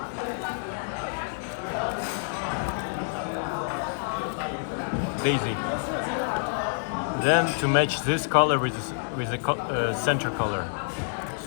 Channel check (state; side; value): silent; right; 58 dB below the other